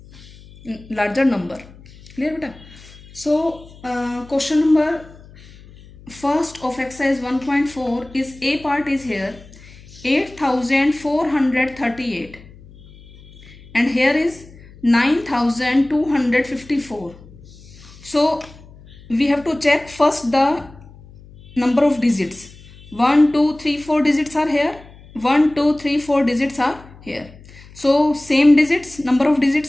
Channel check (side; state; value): left; noise; hum, 22 dB below the sound